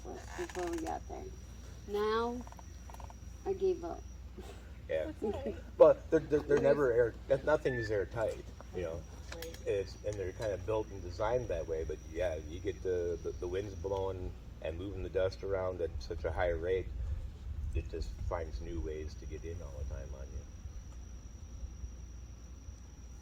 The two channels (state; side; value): identical; both; correlation 1.00